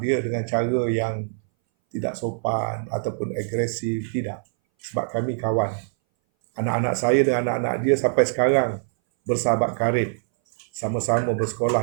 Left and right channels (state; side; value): silent; left; 60 dB below the other